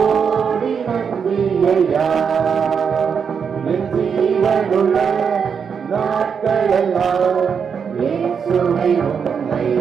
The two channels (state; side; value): quieter; left; 6.6 dB